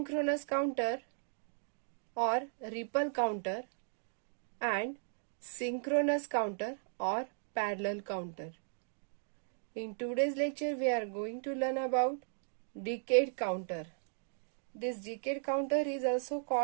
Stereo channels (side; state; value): left; silent; digital silence